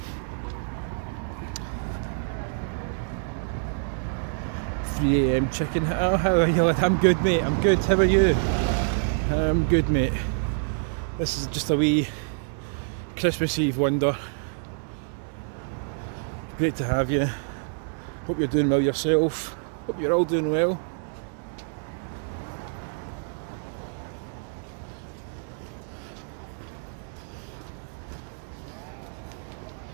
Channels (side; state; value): left; silent; digital silence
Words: .3 AM chicken. Oh, how are you? I'm good, mate. I'm good. How are you? I'm good, mate. This is just a wee Christmas Eve wonder. Great to have you. Hope you're doing well yourself. Hope you're all doing well.